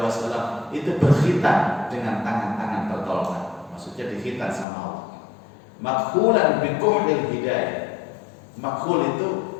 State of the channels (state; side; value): drops out; right; at 4.7 s